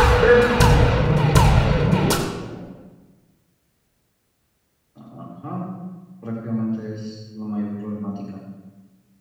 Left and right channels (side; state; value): both; identical; correlation 1.00